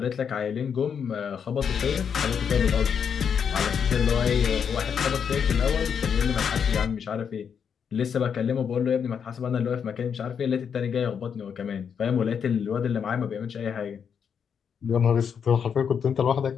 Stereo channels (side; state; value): right; quieter; 7.2 dB